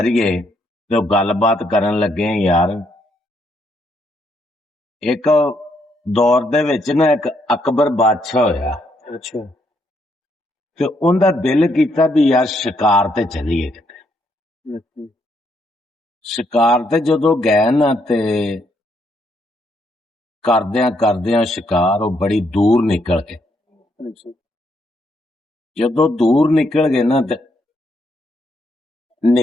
ਤੇ ਉਹ ਗੱਲਬਾਤ ਕਰਨ ਲੱਗੇ ਯਾਰ। ਇੱਕ ਦੌਰ ਦੇ ਵਿੱਚ ਨਾ ਇੱਕ ਅਕਬਰ ਬਾਦਸ਼ਾਹ ਹੋਇਆ। ਅੱਛਾ। ਤੇ ਉਹਦਾ ਦਿਲ ਕੀਤਾ ਵੀ ਯਾਰ ਸ਼ਿਕਾਰ ਤੇ ਚੱਲੀਏ ਕਿਤੇ। ਸ਼ਿਕਾਰ ਤੇ ਜਦੋਂ ਗਏ ਨਾ ਤੇ ਕਰਦਿਆਂ ਸ਼ਿਕਾਰ ਉਹ ਬੜੀ ਦੂਰ ਨਿਕਲ ਗਏ। ਜਦੋਂ ਦੂਰ ਨਿਕਲ ਗਏ ਨਾ ਤੇ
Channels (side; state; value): both; normal; correlation 0.74